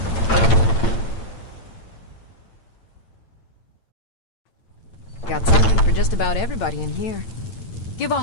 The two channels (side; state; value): right; late; 8.9 ms